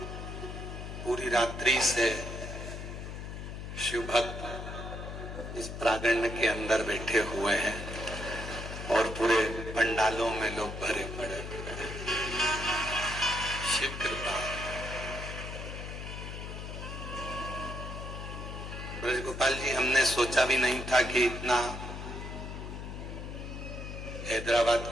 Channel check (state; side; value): noise; left; hum, 8 dB below the sound